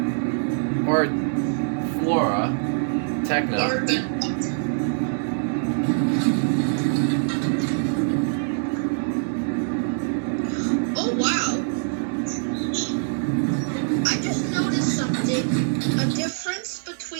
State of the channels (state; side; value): silent; left; digital silence